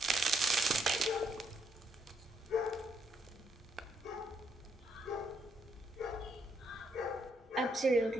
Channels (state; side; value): normal; both; correlation 0.75